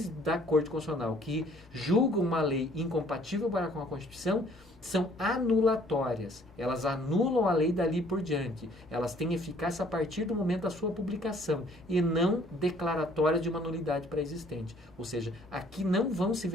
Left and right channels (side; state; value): both; normal; correlation 0.58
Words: da Corte Constitucional que julgam uma lei incompatível com a Constituição são anulatórias. Elas anulam a lei dali por diante. Elas têm eficácia a partir do momento da sua publicação e não declaratória de uma nulidade pré-existente. Ou seja, aqui não vão se